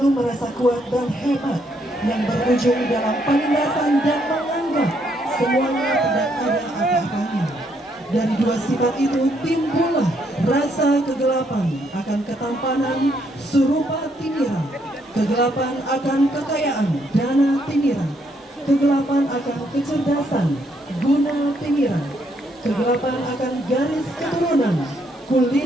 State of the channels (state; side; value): normal; both; correlation 0.73